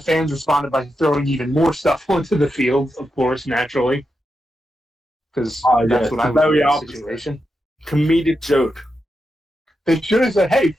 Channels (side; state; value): both; normal; correlation 0.87